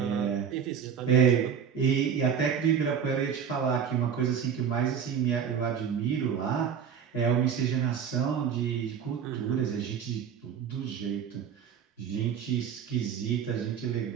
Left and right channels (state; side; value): quieter; left; 7.6 dB